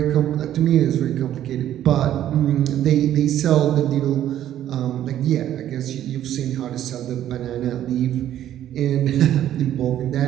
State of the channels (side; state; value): left; quieter; 11.7 dB